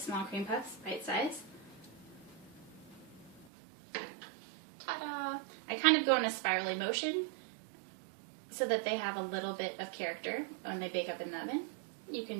cream puffs, bite size. Ta-da! I kind of go in a spirally motion so that they have a little bit of character when they bake up in the oven. You can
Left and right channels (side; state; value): left; drops out; at 3.5 s